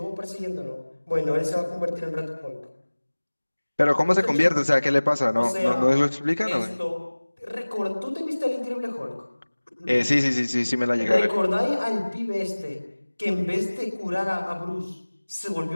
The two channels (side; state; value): both; inverted; correlation -1.00